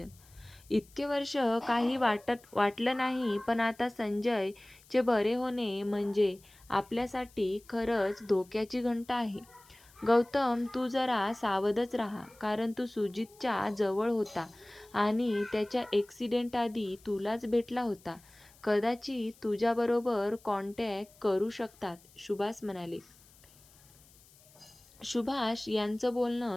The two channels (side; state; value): left; noise; hiss, 26 dB below the sound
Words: इतके वर्ष काही वाटलं नाही, पण आता संजयचे बरे होणे म्हणजे आपल्यासाठी खरंच धोक्याची घंटा आहे. गौतम, तू जरा सावधच राहा, कारण तू सुजितच्या जवळ होता आणि त्याच्या ॲक्सिडेंट आधी तुलाच भेटला होता. कदाचित तुझ्याबरोबर कॉन्टॅक्ट करू शकतात, सुभाष म्हणाले. सुभाष यांचं